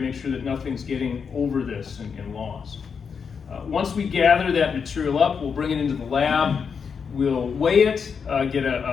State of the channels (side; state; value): right; quieter; 6.2 dB